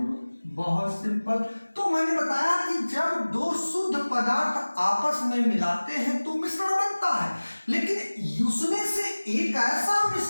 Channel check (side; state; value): both; inverted; correlation -1.00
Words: लोग। बहुत सिंपल। तो मैंने बताया कि जब दो शुद्ध पदार्थ आपस में मिलाते हैं तो मिश्रण बनता है, लेकिन उसमें से एक ऐसा